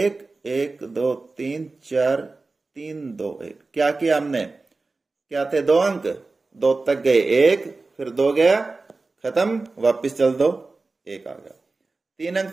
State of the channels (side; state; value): left; quieter; 3.6 dB